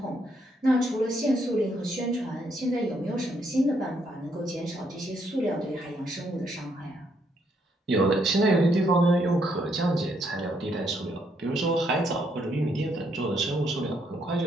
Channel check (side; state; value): both; normal; correlation 0.73